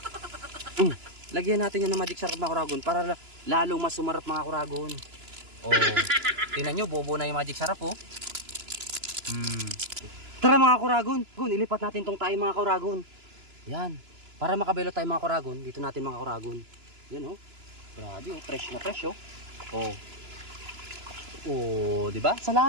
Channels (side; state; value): left; late; 2.9 ms